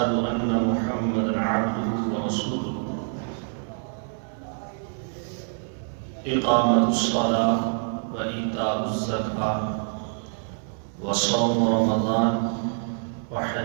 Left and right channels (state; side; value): silent; left; 61 dB below the other